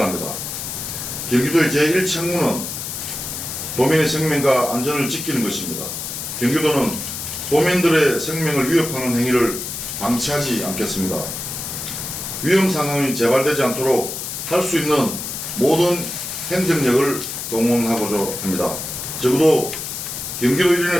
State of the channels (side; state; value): left; noise; hiss, 6 dB below the sound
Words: 경기도의 제1책무는 도민의 생명과 안전을 지키는 것입니다. 경기도는 도민들의 생명을 위협하는 행위를 방치하지 않겠습니다. 위험 상황이 재발되지 않도록 할 수 있는 모든 행정력을 동원하고자 합니다. 적어도 경기도